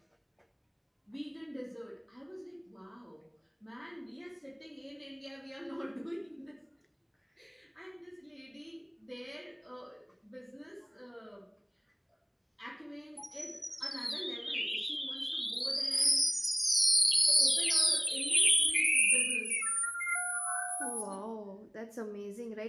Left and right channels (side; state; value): both; identical; correlation 1.00